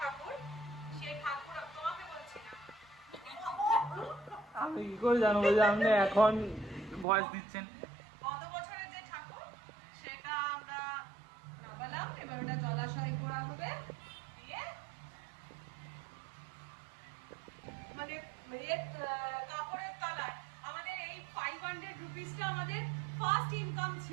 সেই ঠাকুর তোমাকে বলছি না, আমি কি করে জানবো যে আপনি এখন ভয়েস দিচ্ছেন? গত বছরের যে ঠাকুর সেটা আমরা নামালাম, এবার ওটা জলাশয় করা হবে দিয়ে মানে কাপড়ের তলায় আমাদের এই 500 রুপিসটা আমাদের ফার্স্ট ইনকাম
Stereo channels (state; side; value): drops out; left; at 7.1 s